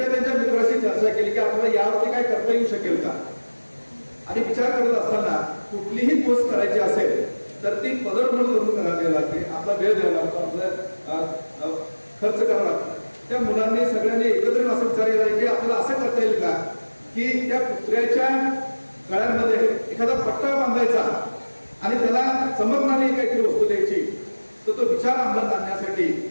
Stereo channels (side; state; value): both; inverted; correlation -1.00